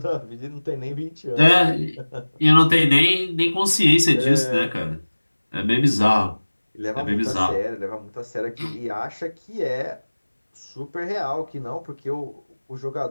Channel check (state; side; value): inverted; both; correlation -1.00